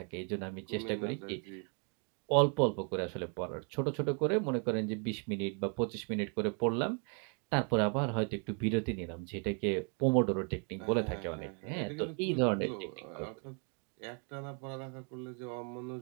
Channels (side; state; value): left; quieter; 38.9 dB